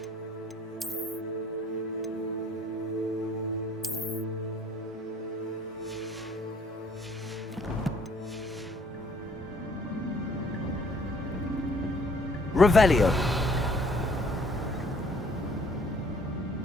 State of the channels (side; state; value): both; normal; correlation 0.60